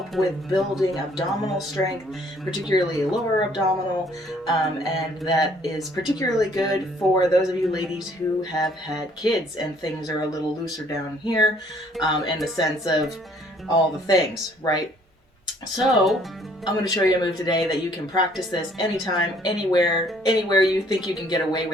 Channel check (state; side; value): normal; both; correlation 0.61